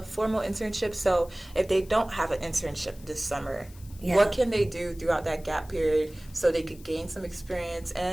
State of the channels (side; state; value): left; noise; hiss, 23 dB below the sound